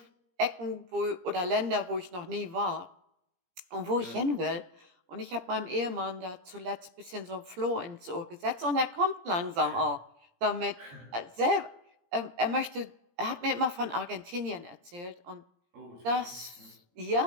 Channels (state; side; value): late; left; 17 ms